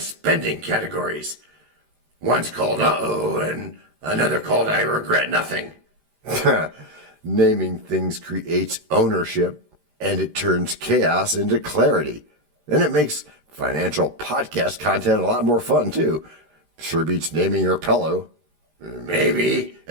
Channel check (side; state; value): left; late; 13 ms